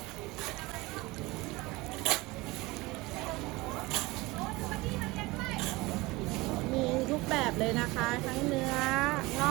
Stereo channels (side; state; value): left; quieter; 22.0 dB